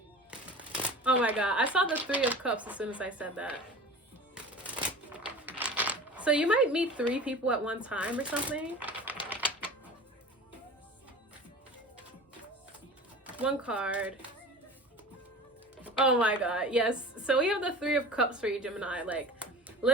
Oh my god, I saw the Three of Cups as soon as I said that. So you might meet 3 people at one time or something. One card. Oh my god, yes. So we have the Three of Cups for you, Gemini. Like,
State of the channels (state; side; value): normal; both; correlation 0.37